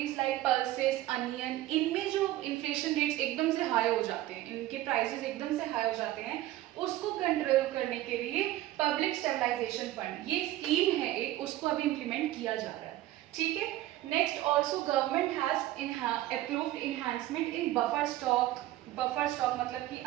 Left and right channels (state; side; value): quieter; left; 15.3 dB